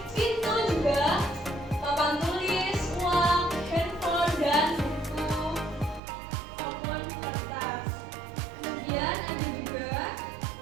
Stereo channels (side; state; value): left; drops out; at 6.0 s